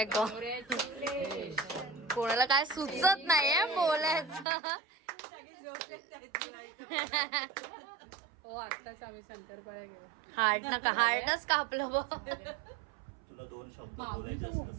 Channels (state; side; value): drops out; left; at 4.5 s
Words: गॉड, कोणाला काय सुचत नाहीये बोलायचं. हार्टच कापलं बघ. तुला 2 शब्द बोलायचे